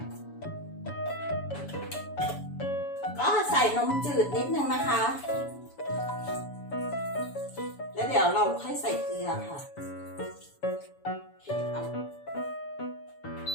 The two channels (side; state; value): right; late; 7.0 ms